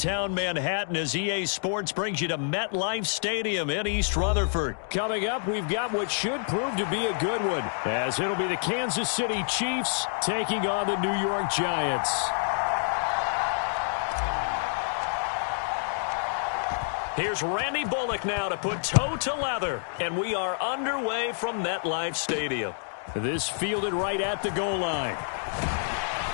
Manhattan as EA Sports brings you to MetLife Stadium in East Rutherford. Coming up, we've got what should prove to be a good one, as it'll be the Kansas City Chiefs taking on the New York Giants. Here's Randy Bullock now to put toe to leather, and we are underway from MetLife Stadium. This fielded right at the goal line.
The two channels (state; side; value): silent; right; digital silence